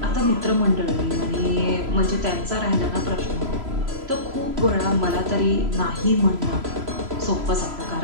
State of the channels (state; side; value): late; left; 3.0 ms